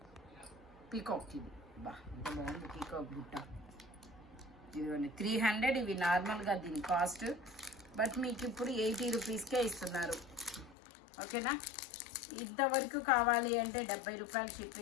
పీకాక్, ఇది బా ఎంత బాగుంది పీకాక్ బుట్ట. ఇదిగోండి 300. ఇవి నార్మల్గా దీని కాస్ట్. బట్ మీకు ఇప్పుడు 80 రూపీస్కే ఇస్తున్నారు. ఓకేనా? ఇంతవరకు కావాలి అంటే 70 రూపాయలు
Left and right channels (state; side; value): drops out; right; at 10.8 s